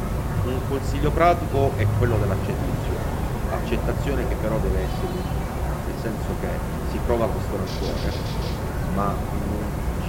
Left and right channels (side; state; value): both; identical; correlation 1.00